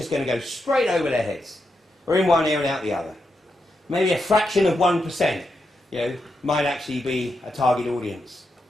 going to go straight over their heads, or in one ear and out the other. Maybe a fraction of 1%, might actually be a target audience.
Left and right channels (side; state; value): both; normal; correlation 0.85